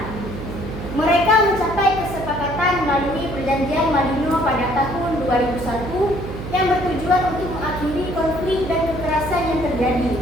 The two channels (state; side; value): noise; right; hum, 9 dB below the sound